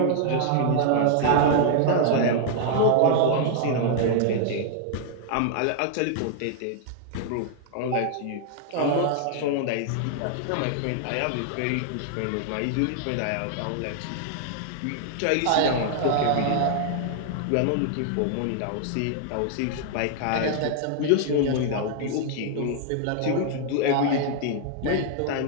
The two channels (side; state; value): both; different; correlation -0.01